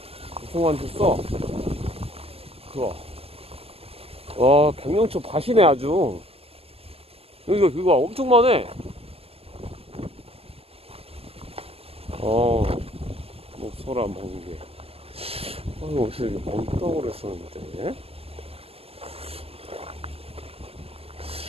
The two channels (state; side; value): late; left; 0.29 ms